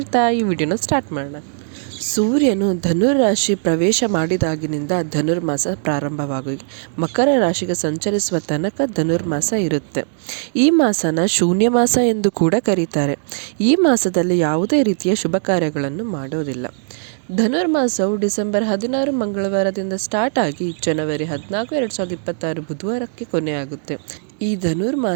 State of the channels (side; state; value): left; silent; digital silence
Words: ಈ ವಿಡಿಯೋನ ಸ್ಟಾರ್ಟ್ ಮಾಡೋಣ. ಸೂರ್ಯನು ಧನುರ್ ರಾಶಿ ಪ್ರವೇಶ ಮಾಡಿದಾಗಿನಿಂದ ಧನುರ್ಮಾಸ ಪ್ರಾರಂಭವಾಗಿ ಮಕರ ರಾಶಿಗೆ ಸಂಚರಿಸುವ ತನಕ ಧನುರ್ಮಾಸ ಇರುತ್ತೆ. ಈ ಮಾಸನ ಶೂನ್ಯ ಮಾಸ ಎಂದು ಕೂಡ ಕರೀತಾರೆ. ಈ ಮಾಸದಲ್ಲಿ ಯಾವುದೇ ರೀತಿಯ ಶುಭ ಕಾರ್ಯಗಳನ್ನು ಮಾಡೋದಿಲ್ಲ. ಧನುರ್ಮಾಸವು ಡಿಸೆಂಬರ್ 16 ಮಂಗಳವಾರದಿಂದ ಸ್ಟಾರ್ಟ್ ಆಗಿ ಜನವರಿ 14, 2026 ಬುಧವಾರಕ್ಕೆ ಕೊನೆಯಾಗುತ್ತೆ. ಈ